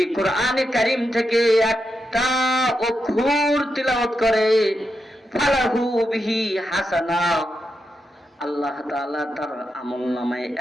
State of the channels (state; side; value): normal; both; correlation 0.86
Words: কোরআনে কারীম থেকে একটা অক্ষর তিলাওয়াত করে ফালাহু বিহি হাসানা, আল্লাহ তাআলা তার আমলনামায়